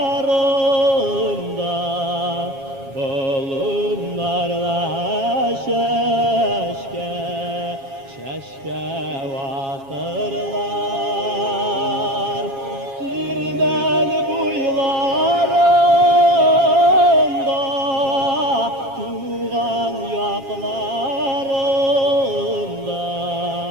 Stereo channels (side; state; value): left; late; 7.3 ms